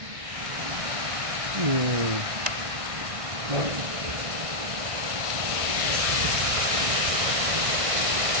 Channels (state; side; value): late; left; 1.6 ms